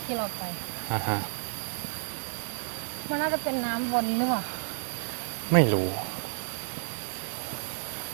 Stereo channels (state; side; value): silent; left; digital silence